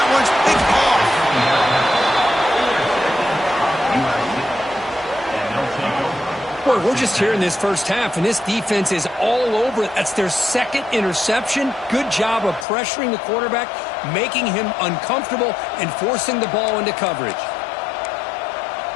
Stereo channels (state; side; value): drops out; right; at 12.7 s